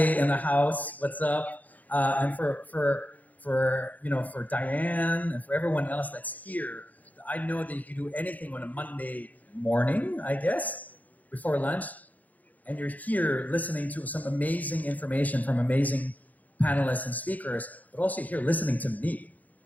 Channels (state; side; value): late; right; 0.079 ms